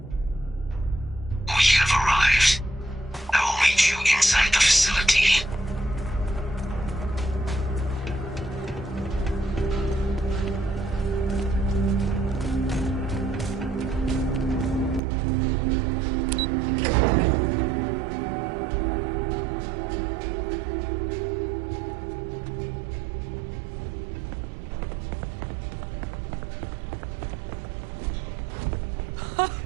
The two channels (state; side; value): drops out; left; at 15.0 s